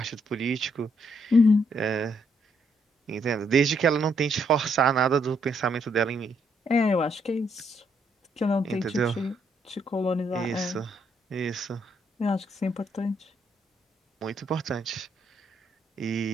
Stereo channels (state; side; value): normal; both; correlation 0.73